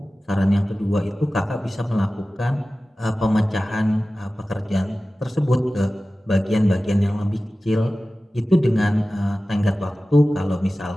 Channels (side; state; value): both; normal; correlation 0.96